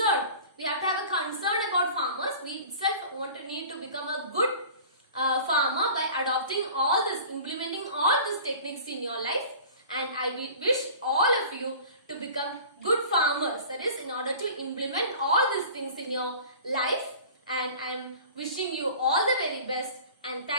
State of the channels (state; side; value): inverted; both; correlation -0.42